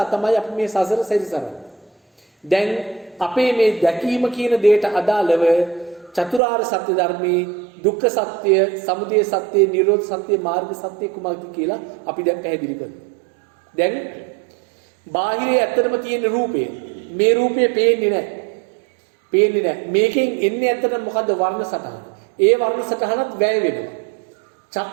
තමයි අපි මේ සසර සැරිසරන්නේ. දැන් අපේ මේ දැකීම කියන දෙයට අදාළව චතුරාර්ය සත්‍ය ධර්මයේ දුක්ඛ සත්‍ය, සමුදය සත්‍ය, නිරෝධ සත්‍ය, මාර්ග සත්‍ය කුමක්ද කියලා අපි දැන් පැහැදිලි කරනවා. දැන් බාහිරේ ඇත්තටම තියෙන රූපය, මේ රූපය පේන්නේ නැහැ. මේකෙන් එන්නේ ඇත්තටම මොකද්ද? වර්ණ සටහන. ඒ වර්ණ සටහනත් වැය වෙනවා.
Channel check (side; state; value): left; drops out; at 6.4 s